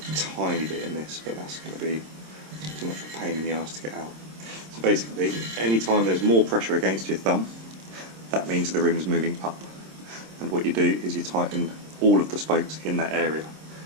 tiny bit in this, but that's going to be too much of a pain in the arse to get out. So basically, any time there's more pressure against your thumb, that means the rim is moving up. And what you do is you tighten all of the spokes in that area,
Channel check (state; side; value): late; left; 26 ms